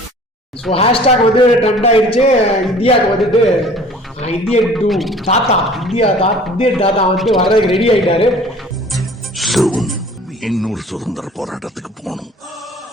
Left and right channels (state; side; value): normal; both; correlation 0.48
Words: So hashtag வந்து ட்ரெண்ட் ஆயிடுச்சு. இந்தியாவுக்கு வந்துட்டு இந்தியன் டூ தாத்தா, இந்தியன் தாத்தா வந்து வர்றதுக்கு ரெடி ஆயிட்டாரு. இன்னொரு சுதந்திர போராட்டத்துக்கு போகணும்.